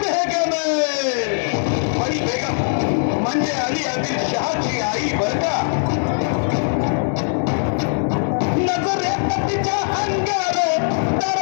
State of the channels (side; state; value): right; silent; digital silence